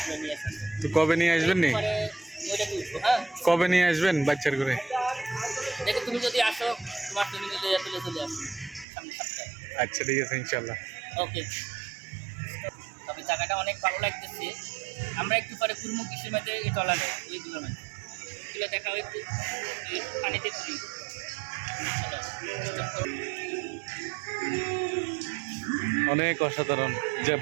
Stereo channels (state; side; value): drops out; left; at 8.8 s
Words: নিয়ে আসেন। তো কবে নিয়ে আসবেন নি? পরে ওইটাকে উঠবো। হ্যাঁ, কবে নিয়ে আসবেন বাচ্চার করে? দেখো তুমি যদি আসো তোমার তুমি মিলে তুলে চলে আসো সামনে সপ্তাহে। আচ্ছা ঠিক আছে, ইনশাল্লাহ। ওকে, তবে জায়গাটা অনেক ভালো লাগতেছে। আমরা একটু পরে ঘুরবো কৃষির মাঝে, এই টলারে এইগুলো মাঝে এগুলো দেখাও একটু, পানিতে ঘুরি। অনেক অসাধারণ